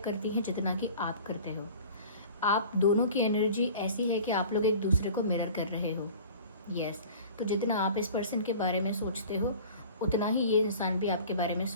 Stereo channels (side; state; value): both; inverted; correlation -0.43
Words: हैं जितना कि आप करते हो। आप दोनों की एनर्जी ऐसी है कि आप लोग एक दूसरे को मिरर कर रहे हो। यस, तो जितना आप इस पर्सन के बारे में सोचते हो उतना ही ये इंसान भी आपके बारे में